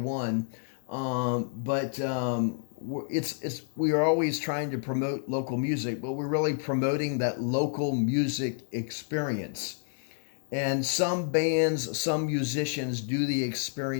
We are always trying to promote local music, but we're really promoting that local music experience. And some bands, some musicians do the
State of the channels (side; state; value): right; silent; digital silence